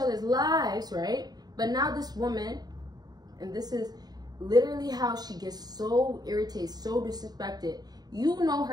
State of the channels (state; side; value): late; left; 0.19 ms